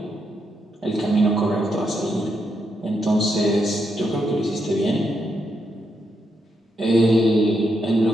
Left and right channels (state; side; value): normal; both; correlation 0.81